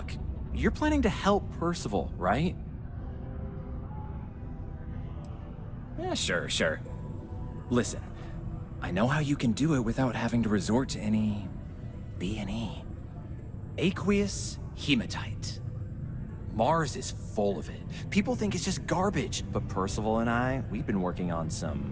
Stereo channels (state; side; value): identical; both; correlation 1.00